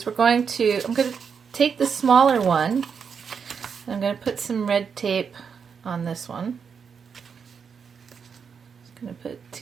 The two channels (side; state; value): left; quieter; 6.4 dB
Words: I'm going to take the smaller one, and I'm going to put some red tape on this one. I'm going to put